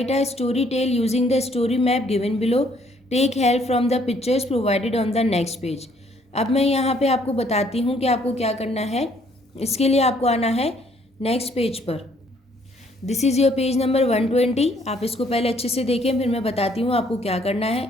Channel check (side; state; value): both; normal; correlation 0.65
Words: a story tell using the story map given below. Take help from the pictures provided on the next page. अब मैं यहाँ पे आपको बताती हूँ कि आपको क्या करना है. इसके लिए आपको आना है नेक्स्ट पेज पर. This is your page number 120. आप इसको पहले अच्छे से देखें फिर मैं बताती हूँ आपको क्या करना